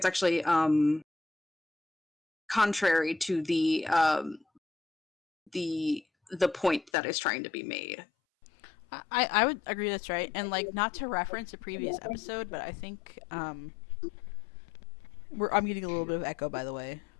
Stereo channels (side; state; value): right; drops out; at 6.9 s